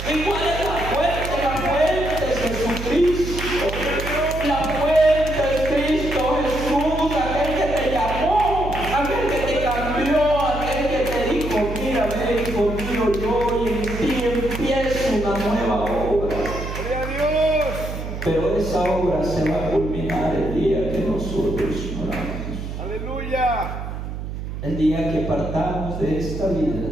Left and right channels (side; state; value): right; noise; hum, 7 dB below the sound